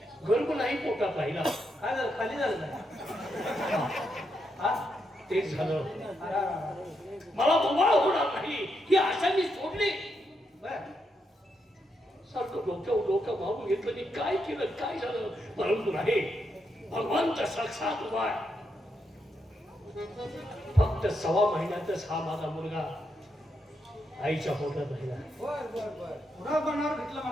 गर्भ नाही पोटात राहिला. काय झालं? खाली झालं काय? हा? ते झालं. अरे. मला बोबाळ होणार नाही ही आशा मी सोडली. बरं. सारखं डोकं मारून घेतलं की काय केलं काय झालं. परंतु नाही भगवंत साक्षात उभा आहे. फक्त 6 महिन्यातच हा माझा मुलगा आईच्या पोटात राहिला. बर. पुन्हा बनावर घेतलं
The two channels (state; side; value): normal; both; correlation 0.81